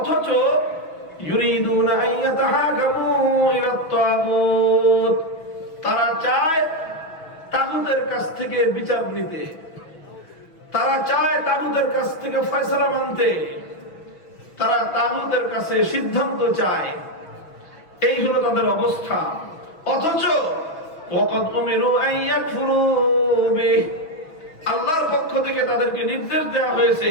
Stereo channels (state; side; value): late; right; 6.1 ms